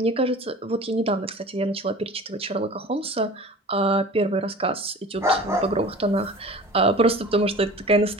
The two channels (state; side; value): normal; both; correlation 0.41